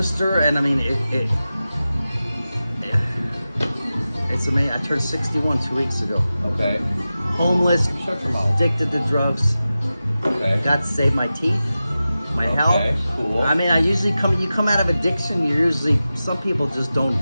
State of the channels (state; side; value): inverted; both; correlation -0.94